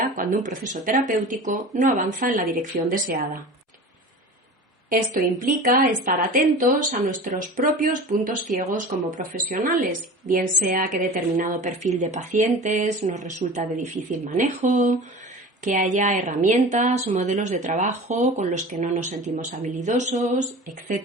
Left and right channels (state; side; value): normal; both; correlation 0.36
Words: cuando un proceso terapéutico no avanza en la dirección deseada. Esto implica estar atentos a nuestros propios puntos ciegos como profesionales, bien sea que determinado perfil de pacientes nos resulta de difícil manejo, que haya herramientas o modelos de trabajo con los que no nos sentimos habilidosos,